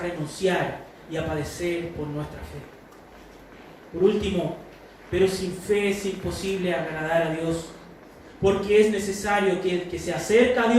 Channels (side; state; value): both; identical; correlation 1.00